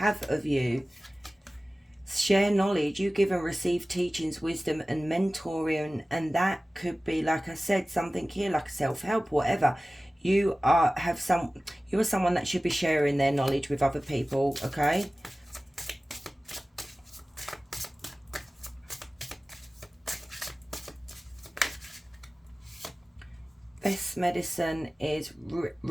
of you. Share knowledge. You give and receive teachings, wisdom and mentoring, and that could be, like I said, something here like self-help, whatever. You are someone that should be sharing their knowledge with other people, okay? Best medicine is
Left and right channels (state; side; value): normal; both; correlation 0.97